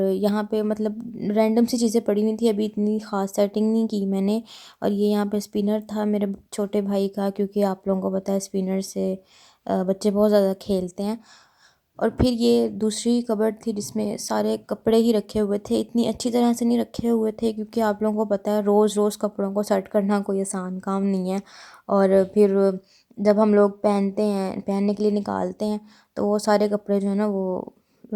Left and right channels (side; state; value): both; identical; correlation 1.00